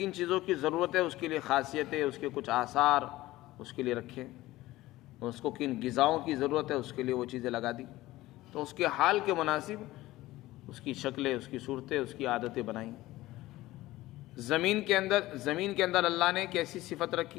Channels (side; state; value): right; quieter; 17.3 dB